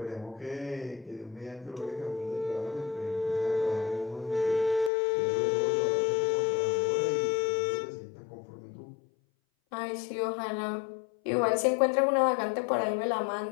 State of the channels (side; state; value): right; drops out; at 4.9 s